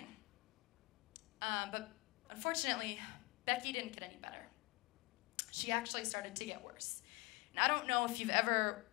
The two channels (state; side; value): quieter; right; 24.7 dB